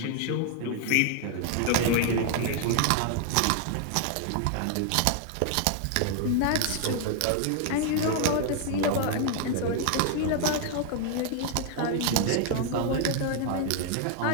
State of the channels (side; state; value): both; different; correlation 0.00